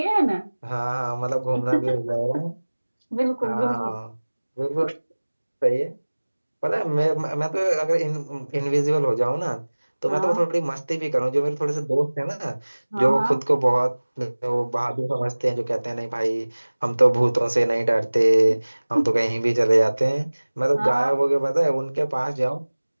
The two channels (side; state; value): both; inverted; correlation -1.00